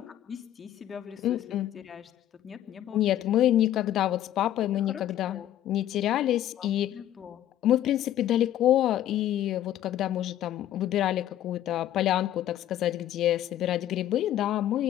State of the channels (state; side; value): quieter; right; 12.3 dB